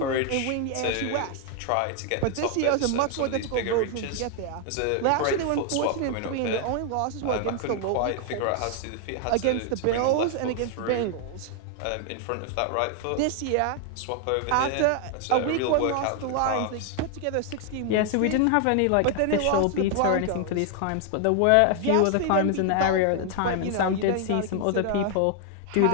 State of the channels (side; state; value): both; different; correlation 0.00